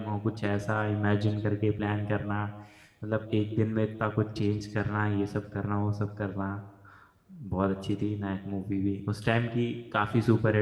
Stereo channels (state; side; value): identical; both; correlation 1.00